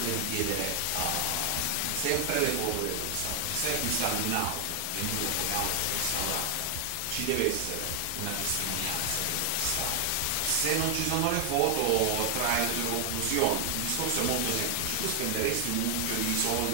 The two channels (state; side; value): different; both; correlation 0.00